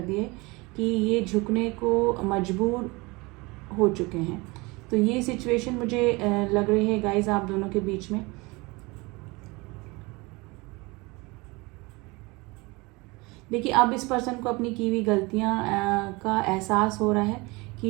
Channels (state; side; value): quieter; left; 24.8 dB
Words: दी है कि ये झुकने को मजबूर हो चुके हैं। तो ये सिचुएशन मुझे लग रही है गाइज आप दोनों के बीच में। देखिए, अब इस पर्सन को अपनी की हुई गलतियां का एहसास हो रहा है